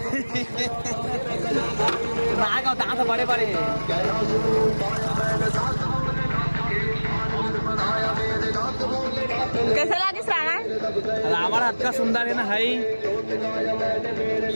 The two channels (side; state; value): both; inverted; correlation -1.00